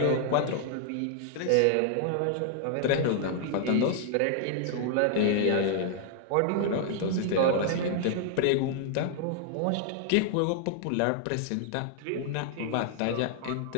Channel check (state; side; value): different; both; correlation 0.00